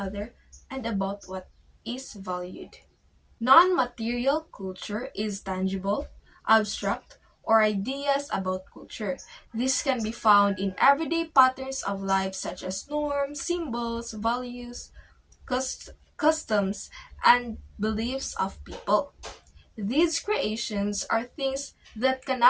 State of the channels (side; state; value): both; identical; correlation 1.00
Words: and about what is valued. Non material culture is tangible, abstract, or ideas about culture. This can be found in everyday patterns of life such as norms, symbols, values, customs, and beliefs of people. These creations are things that